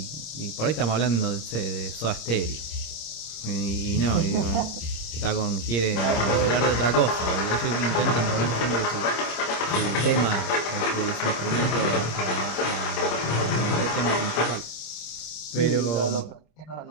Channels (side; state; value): right; late; 27 ms